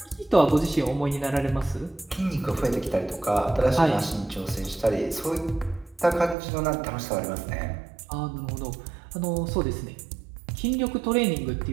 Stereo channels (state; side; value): drops out; left; at 6.4 s